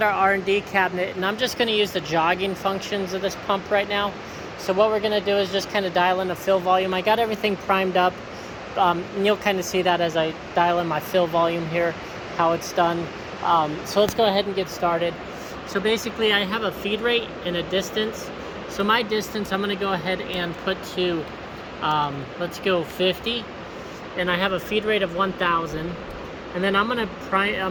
our R&D cabinet, and I'm just going to use the jogging functions of this pump right now. So what we're going to do is just kind of dial in the fill volume. I got everything primed up, and you'll kind of see that as I dial in my fill volume here, how it's done. So let's go ahead and get started. So basically I have a feed rate and a distance. So my distance I'm going to go ahead and put to, let's go 50. And I have a feed rate of 1,000, and then I'm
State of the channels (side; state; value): both; identical; correlation 1.00